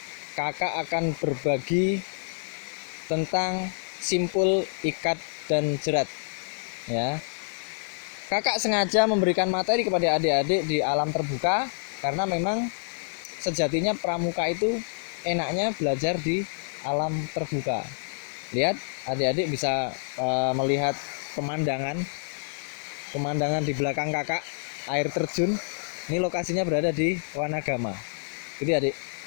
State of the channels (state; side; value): silent; right; 60 dB below the other